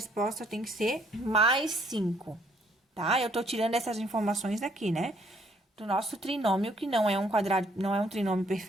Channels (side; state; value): both; normal; correlation 0.66